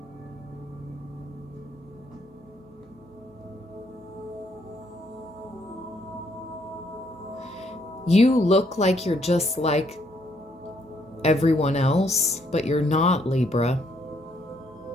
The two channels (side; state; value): both; normal; correlation 0.71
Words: You look like you're just like everyone else, but you're not, Libra.